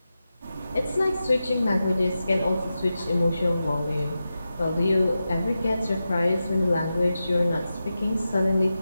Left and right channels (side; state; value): both; inverted; correlation -0.91